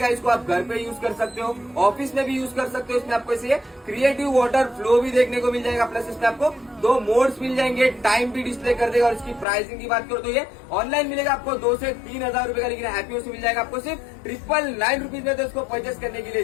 इसको आप घर पे यूज कर सकते हो, ऑफिस में भी यूज कर सकते हो। इसमें आपको इसे क्रिएटिव वाटर फ्लो भी देखने को मिल जाएगा, प्लस इसमें आपको 2 मोड्स मिल जाएंगे, टाइम भी डिस्प्ले कर देगा। और इसकी प्राइसिंग की बात करो तो ये ऑनलाइन मिलेगा आपको 2 से 3 हजार रुपए का, लेकिन हैप्पी होम्स से मिल जाएगा आपको सिर्फ 999 रुपीज में। तो इसको परचेस करने के लिए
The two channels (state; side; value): drops out; right; at 9.5 s